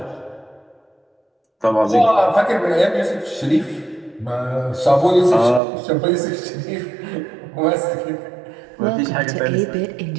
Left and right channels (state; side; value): drops out; left; at 5.6 s